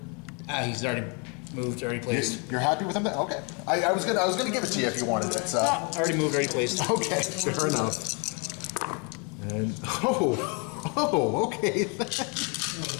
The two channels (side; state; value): right; quieter; 34.5 dB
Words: He's already moved, already placed. You're happy with him? Then? Okay. I was gonna give it to you if you wanted it. So. Already moved, already placed. Okay, fair enough. And okay.